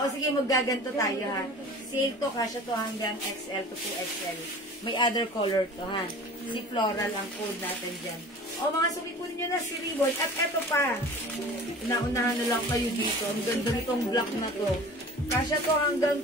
sige, maggaganto tayo, ha. Sale to, kasya to hanggang XL to 2XL. May other color to, ha. Si floral ang code natin dyan. O, mga sumikunin nyo na si ribbon. At eto pa. Naunahan na lang kayo dito. Ang ganda nitong black na to. Kasya to hanggang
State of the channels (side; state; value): both; normal; correlation 0.41